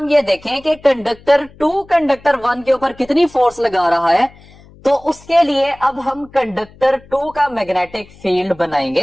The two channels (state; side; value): noise; left; hum, 25 dB below the sound